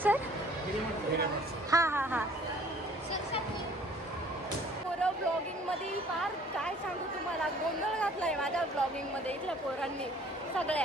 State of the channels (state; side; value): normal; both; correlation 0.54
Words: हा हा हा. पोरं ब्लॉगिंग मध्ये फार काय सांगू तुम्हाला, गोंधळ घातलाय माझ्या ब्लॉगिंग मध्ये. इथल्या पोरांनी